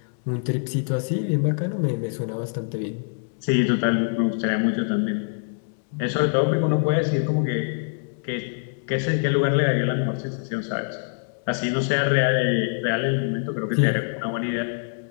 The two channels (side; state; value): right; silent; digital silence